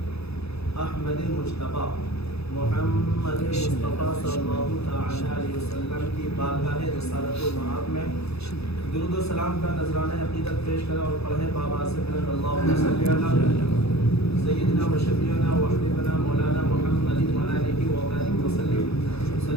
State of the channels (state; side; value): late; right; 0.78 ms